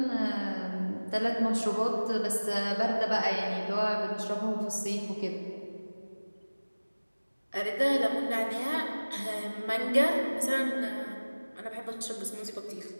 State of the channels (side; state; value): both; inverted; correlation -1.00